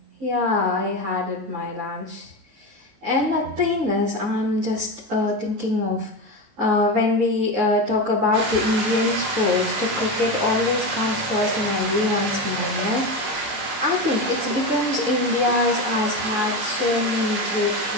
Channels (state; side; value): late; left; 19 ms